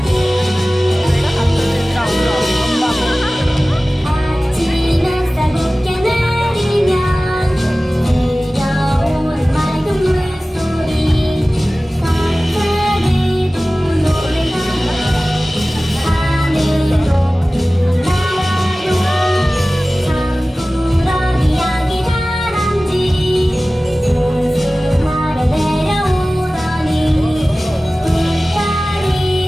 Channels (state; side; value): normal; both; correlation 0.97